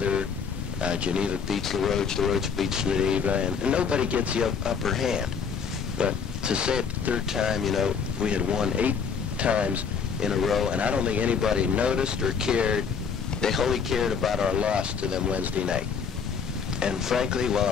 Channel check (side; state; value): right; quieter; 6.2 dB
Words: Geneva beats LaRoche beats Geneva, and nobody gets the upper hand. But to say it the third time, you know, we had won 8 times in a row, and I don't think anybody noticed or cared. They wholly cared about our loss to them Wednesday night. And frankly, while